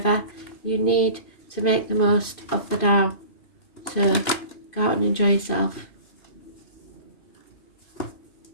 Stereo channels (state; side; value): late; right; 2.5 ms